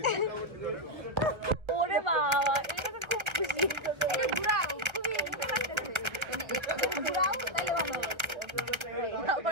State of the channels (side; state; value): left; late; 1.3 ms